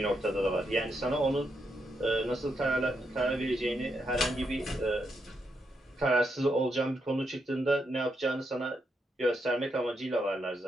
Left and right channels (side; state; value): both; normal; correlation 0.81